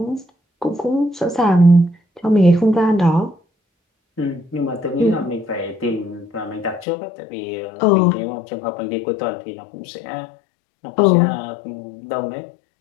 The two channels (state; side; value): drops out; right; at 6.9 s